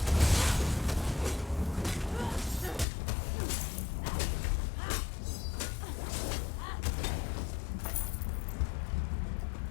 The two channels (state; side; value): drops out; right; at 2.9 s